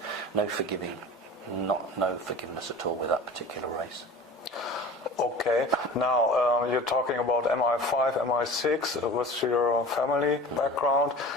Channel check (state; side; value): normal; both; correlation 0.38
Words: no forgiving, no forgiveness at all with that particular race. Okay, now you're talking about MI5, MI6 with your family background.